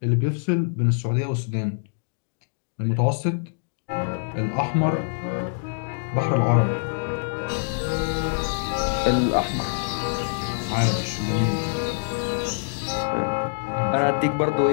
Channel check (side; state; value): right; silent; digital silence